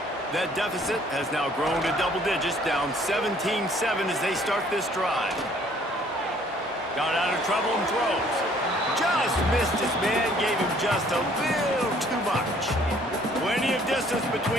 That deficit has now grown to double digits, down 17-7 as they start this drive. Got out of trouble and throws. Just missed his man, gave him just a little too much. Plenty of distance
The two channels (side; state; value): both; normal; correlation 0.59